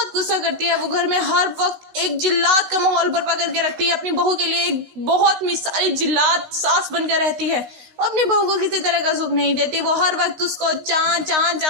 गुस्सा करती है। वो घर में हर वक्त एक जिल्लात का माहौल बर्पा करके रखती है अपनी बहू के लिए, एक बहुत मिसाली जिल्लात सास बनकर रहती है। वो अपनी बहू को किसी तरह का सुख नहीं देती। वो हर वक्त उसको चां चां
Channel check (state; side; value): late; left; 16 ms